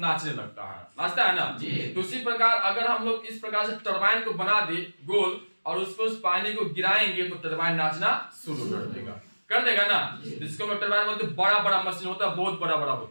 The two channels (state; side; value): inverted; both; correlation -1.00